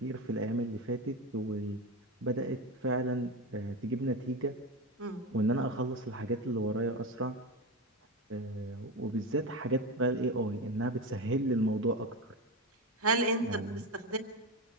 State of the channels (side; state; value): both; normal; correlation 0.19